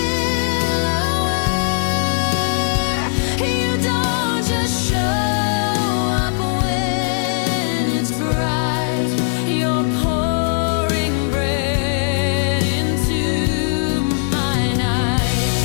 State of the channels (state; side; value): silent; right; digital silence